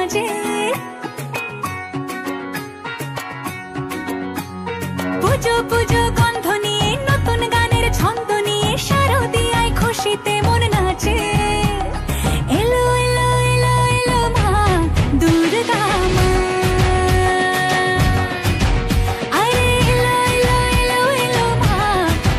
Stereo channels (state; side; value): identical; both; correlation 1.00